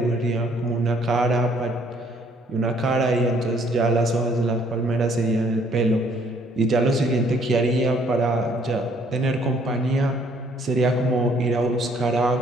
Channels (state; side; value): normal; both; correlation 0.63